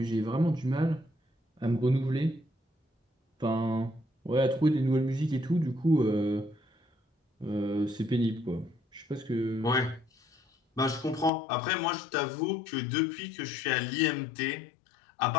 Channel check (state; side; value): drops out; right; at 11.3 s